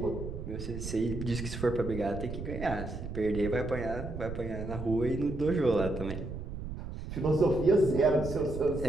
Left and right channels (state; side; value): noise; right; rumble, 7 dB below the sound